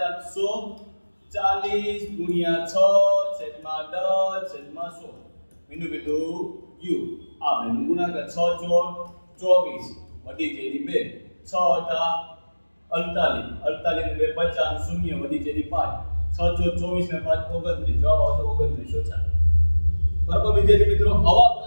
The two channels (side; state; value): both; inverted; correlation -1.00